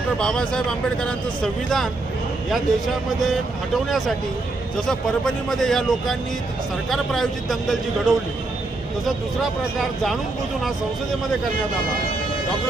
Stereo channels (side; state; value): left; quieter; 3.1 dB